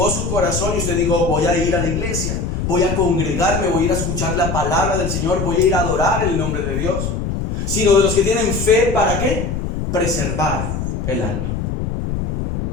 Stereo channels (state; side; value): noise; left; rumble, 3 dB below the sound